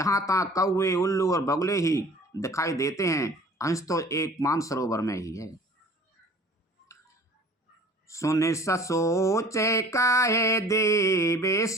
तहाँ कौवे उल्लू और बगुले ही दिखाई देते हैं, हंस तो एक मानसरोवर में ही है। सुन सोचे काहे देवे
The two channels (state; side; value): normal; both; correlation 0.47